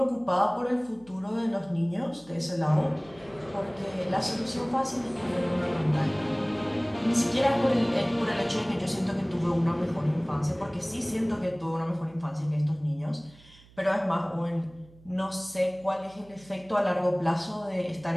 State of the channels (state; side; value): noise; right; hum, 25 dB below the sound